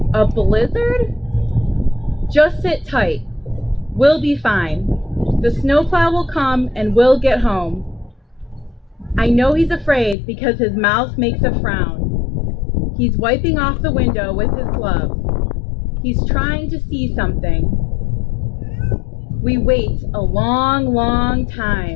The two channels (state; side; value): drops out; right; at 10.2 s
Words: A blizzard? Just sit tight. We'll be fine. The snowplow will come and we'll get home. I know he's afraid because his mouth makes a frown. He's wiping off the window with his glove. He's trying to see something. We wait a long, long